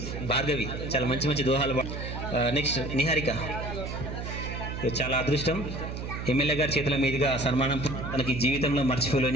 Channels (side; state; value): right; noise; hum, 6 dB below the sound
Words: భార్గవి చాలా మంచి మంచి దోహాలు నెక్స్ట్ నిహారిక చాలా అదృష్టం. ఎమ్మెల్యే గారి చేతుల మీదుగా సన్మానం తనకి జీవితంలో